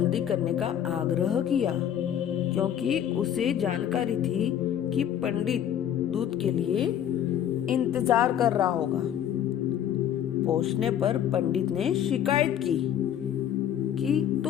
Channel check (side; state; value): right; quieter; 10.1 dB